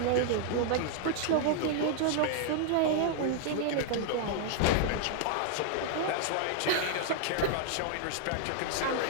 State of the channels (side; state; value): both; different; correlation 0.00